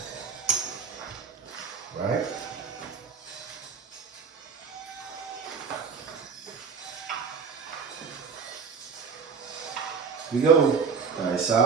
Right? Here we go. Dice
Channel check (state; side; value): quieter; left; 5.9 dB